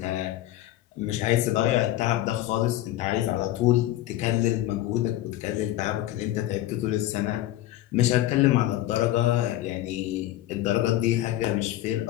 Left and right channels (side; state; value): right; quieter; 14.5 dB